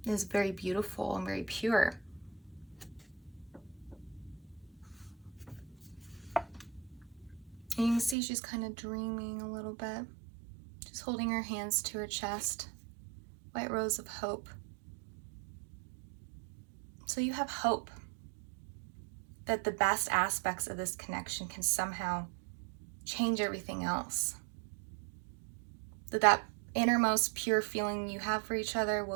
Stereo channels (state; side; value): drops out; left; at 8.2 s